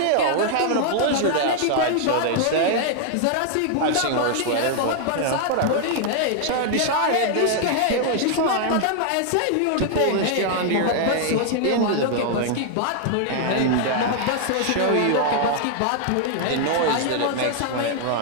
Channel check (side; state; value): both; different; correlation 0.00